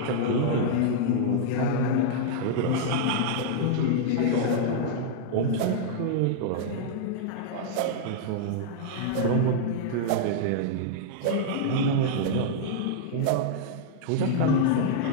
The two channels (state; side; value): different; both; correlation -0.01